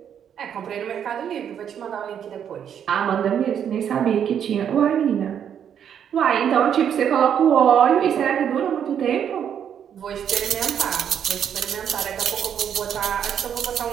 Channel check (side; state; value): left; quieter; 8.7 dB